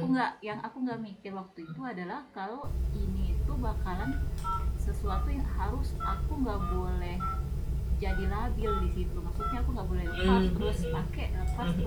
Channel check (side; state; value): both; identical; correlation 1.00